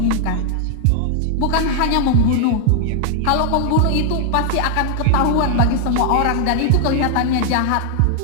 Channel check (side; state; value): both; different; correlation 0.00